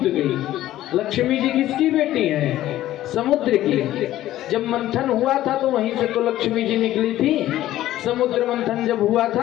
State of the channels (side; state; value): right; quieter; 14.1 dB